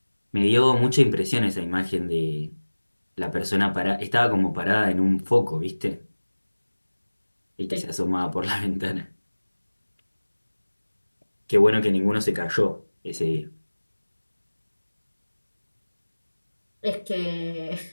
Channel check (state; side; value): inverted; both; correlation -1.00